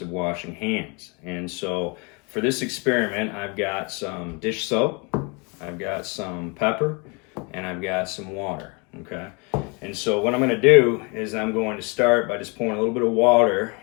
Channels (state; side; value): quieter; right; 31.1 dB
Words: of washing hands. And so for this experiment, I've got some dish soap, I've got some pepper, and I've got some water, okay? And so what I'm going to do is I'm going to start by just pouring a little bit of water